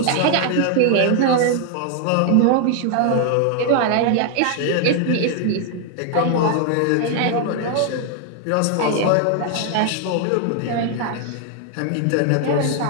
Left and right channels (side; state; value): both; different; correlation 0.00